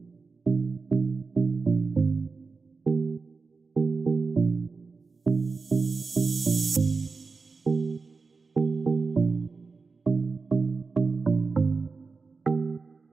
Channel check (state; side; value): quieter; left; 4.4 dB